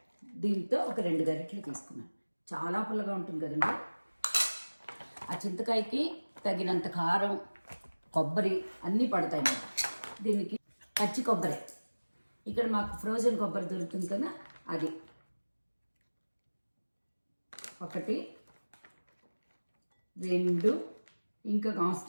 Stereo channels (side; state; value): both; inverted; correlation -1.00